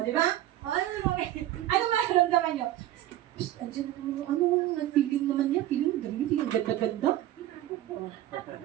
di ba? O, ano mararamdaman nyo? Andiyan naman feeling naman niya, feeling ganda-ganda.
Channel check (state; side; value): quieter; left; 13.6 dB